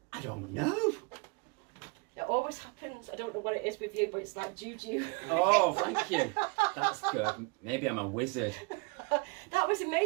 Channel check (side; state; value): left; quieter; 30.7 dB